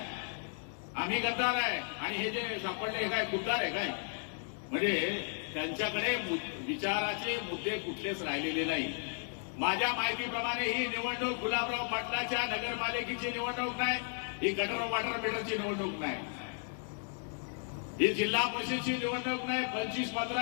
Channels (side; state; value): right; silent; 55 dB below the other